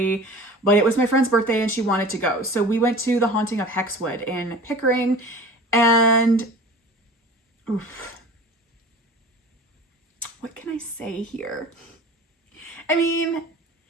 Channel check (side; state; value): both; normal; correlation 0.40